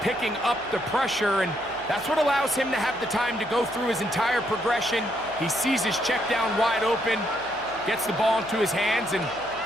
up the pressure, and that's what allows him to have the time to go through his entire progression. He sees his check down wide open, gets the ball into his hands, and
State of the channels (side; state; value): right; noise; hum, 23 dB below the sound